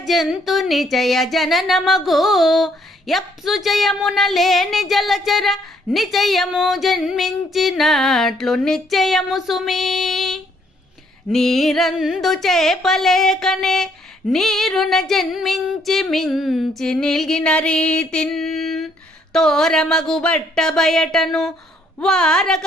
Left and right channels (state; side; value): normal; both; correlation 0.67